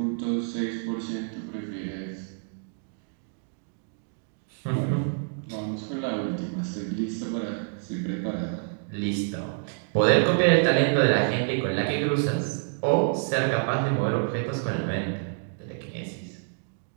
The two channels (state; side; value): silent; left; 60 dB below the other